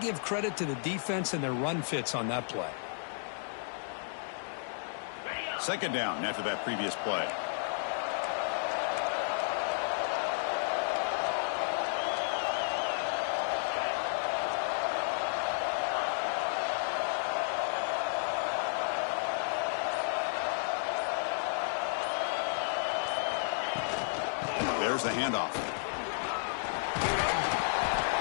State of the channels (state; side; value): silent; right; digital silence